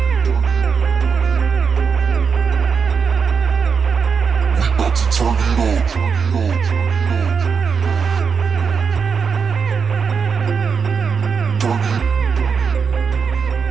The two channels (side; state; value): left; quieter; 6.0 dB